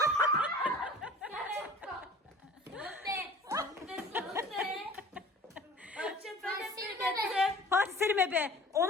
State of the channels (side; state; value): both; normal; correlation 0.45